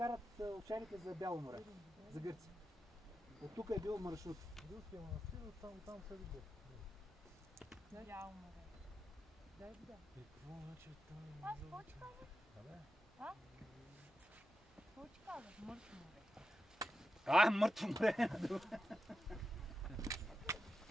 овчарите за Бяло море, за Гърция. От тук е бил маршрут. Руския манастир, там се види. Бяло море. Да. И какво значи там? Аз какво ти казах? Абе? А? Какво ти казах? Мъртво море. Мъртво море.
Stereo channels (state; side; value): normal; both; correlation 0.89